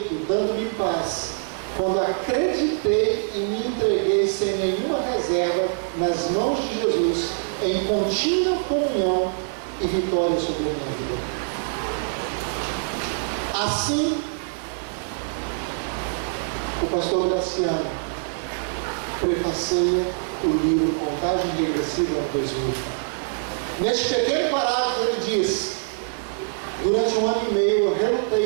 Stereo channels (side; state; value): left; silent; digital silence